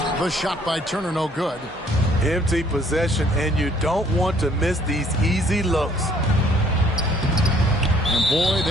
The shot by Turner, no good. Empty possession, and you don't want to miss these easy looks. And boy,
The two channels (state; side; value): normal; both; correlation 0.61